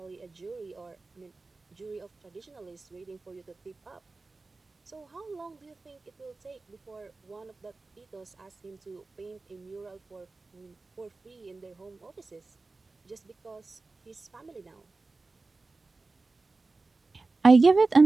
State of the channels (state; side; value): quieter; left; 3.6 dB